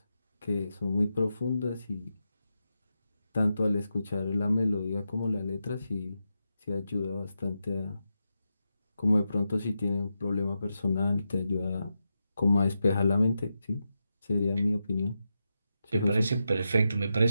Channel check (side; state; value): both; inverted; correlation -0.88